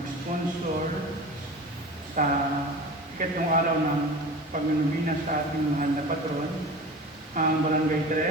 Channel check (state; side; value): normal; both; correlation 0.34